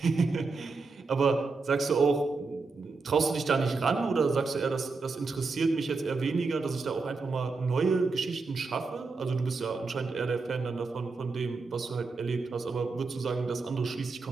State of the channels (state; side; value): quieter; left; 4.1 dB